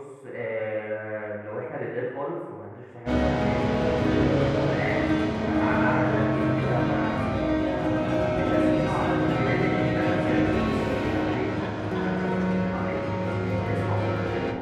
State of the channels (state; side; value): identical; both; correlation 1.00